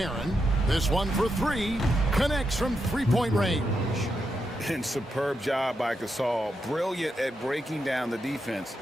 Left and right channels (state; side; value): normal; both; correlation 0.84